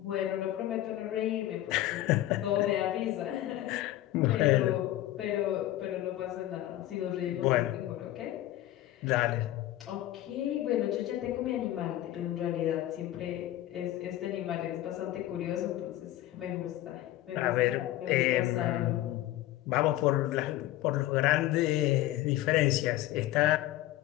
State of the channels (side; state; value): right; quieter; 14.6 dB